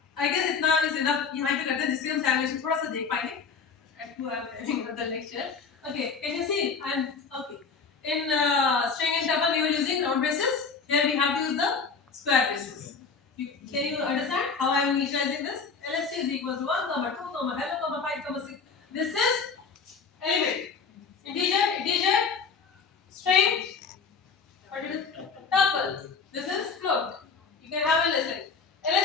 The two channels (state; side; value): quieter; right; 5.2 dB